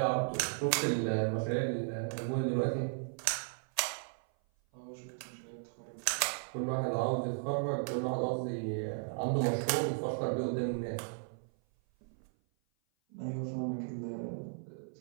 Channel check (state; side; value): silent; left; 54 dB below the other